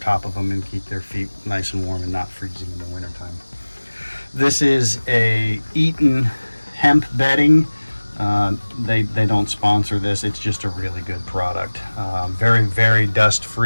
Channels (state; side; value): inverted; both; correlation -1.00